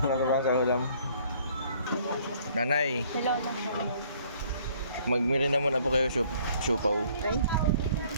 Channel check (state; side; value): inverted; both; correlation -0.59